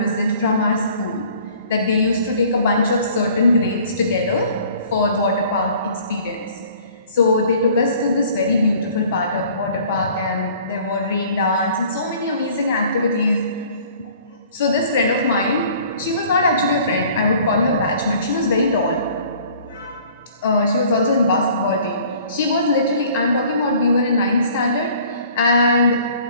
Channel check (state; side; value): inverted; both; correlation -0.53